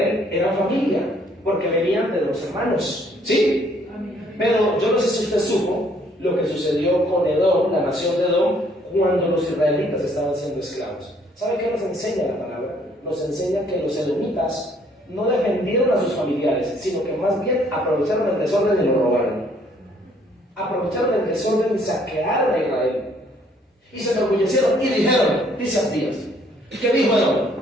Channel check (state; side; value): normal; both; correlation 0.64